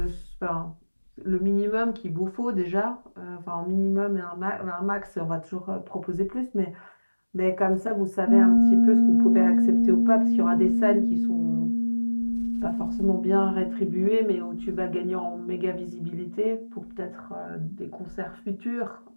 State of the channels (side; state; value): both; inverted; correlation -1.00